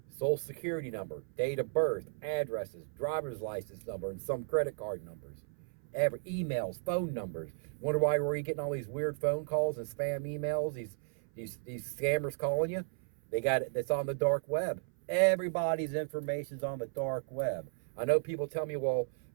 social security number, date of birth, addresses, driver's license number, and some credit card numbers. Emails, phone numbers. Wonder why were you getting all these weird phone calls and spam emails? These scammers calling you. They got it. It's on the dark web. Everybody's information's on the dark web. I know people tell me, well,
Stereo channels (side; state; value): left; silent; 55 dB below the other